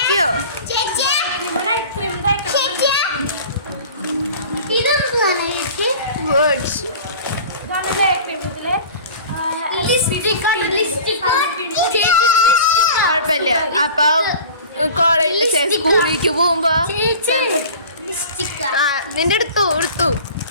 നൈറ്റ് ക്രീം തേക്കണം. ഇതെന്താണ് ചേച്ചി? വേർഡ്സ്. ഇതാണ് ഡേ ക്രീം. ഇതില് കുഴപ്പമില്ല. അപ്പൊ കോളേജ് സ്കൂളിലേക്ക് പോകുമ്പോ നിന്റെ എടുത്തു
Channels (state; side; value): inverted; both; correlation -0.40